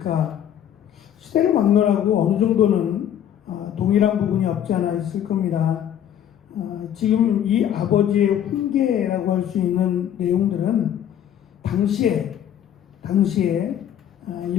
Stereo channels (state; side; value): quieter; right; 10.1 dB